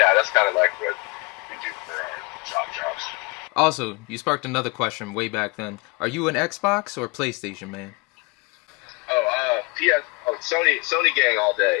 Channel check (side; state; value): right; quieter; 28.4 dB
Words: that's kind of like what we do for our jobs. Also, you sparked another question way back then. Are you an Xbox or PlayStation man? PS. Oh, Sony gang all